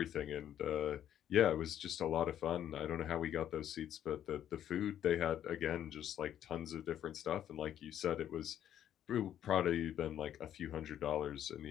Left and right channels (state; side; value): quieter; right; 10.6 dB